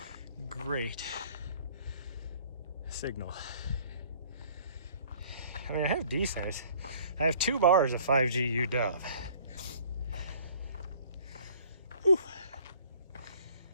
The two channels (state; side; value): inverted; both; correlation -0.54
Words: great signal. I mean, I have decent. I have 2 bars of 5G UW. Whew.